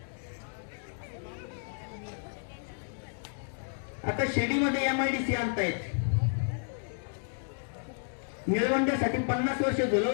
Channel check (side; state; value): right; silent; digital silence